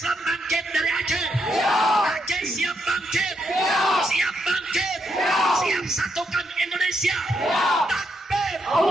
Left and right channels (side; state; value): both; normal; correlation 0.80